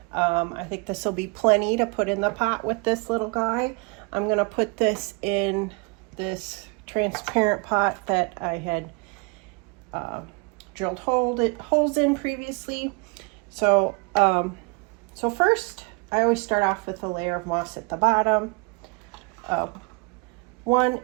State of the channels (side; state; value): left; quieter; 30.9 dB